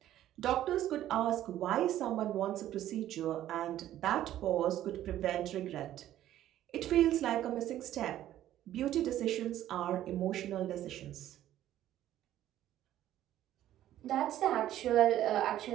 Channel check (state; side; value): quieter; left; 12.7 dB